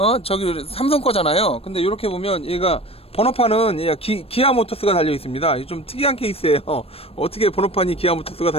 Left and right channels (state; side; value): late; right; 0.28 ms